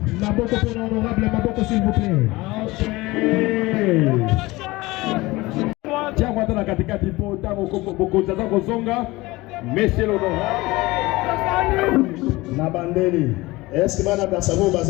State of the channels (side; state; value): right; quieter; 20.7 dB